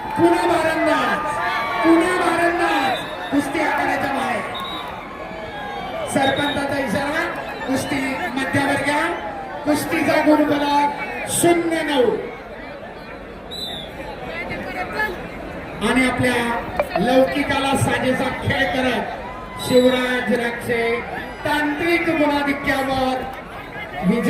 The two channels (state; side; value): identical; both; correlation 1.00